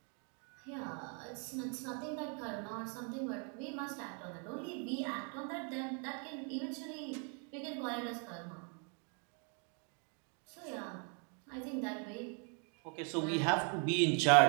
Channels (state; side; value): quieter; left; 39.3 dB